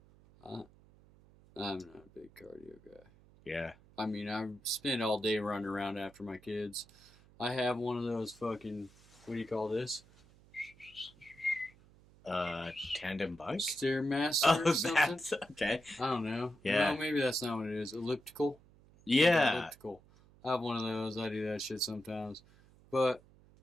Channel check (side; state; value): right; noise; hum, 26 dB below the sound